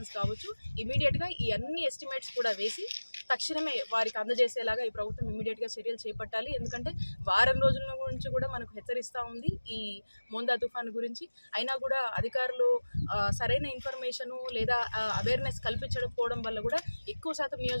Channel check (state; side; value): inverted; both; correlation -1.00